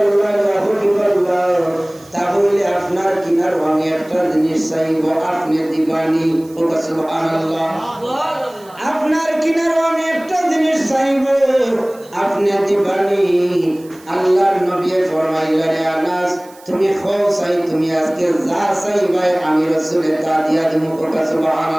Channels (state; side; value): noise; right; hiss, 25 dB below the sound